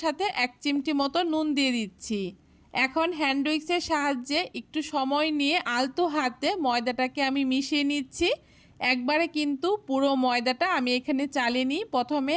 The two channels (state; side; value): identical; both; correlation 1.00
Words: সাথে 1 চিমটি মতো নুন দিয়ে দিচ্ছি। এখন হ্যান্ড উইক্সের সাহায্যে একটু সময় নিয়ে আলতো হাতে ময়দাটাকে আমি মিশিয়ে নিচ্ছি। একবারে কিন্তু পুরো ময়দাটা আমি এখানে চালিনি, প্রথমে